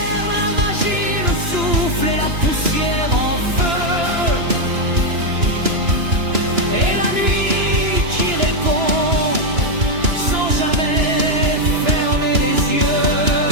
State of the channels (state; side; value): late; left; 2.9 ms